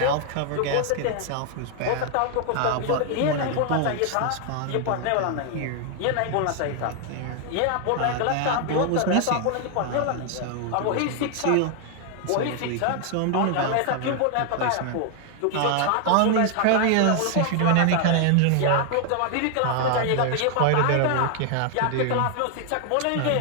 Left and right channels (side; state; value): both; different; correlation 0.00